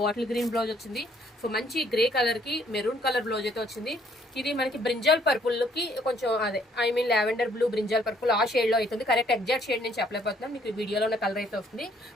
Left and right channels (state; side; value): normal; both; correlation 0.65